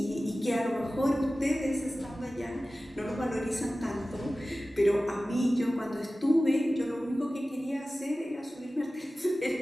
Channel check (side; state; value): both; normal; correlation 0.96